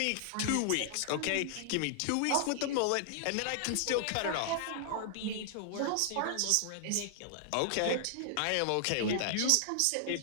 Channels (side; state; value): both; different; correlation -0.01